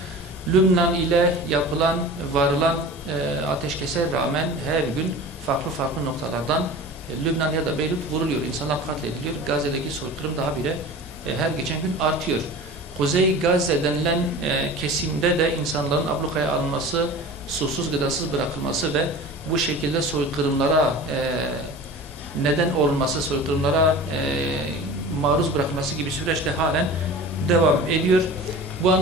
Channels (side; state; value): both; normal; correlation 0.37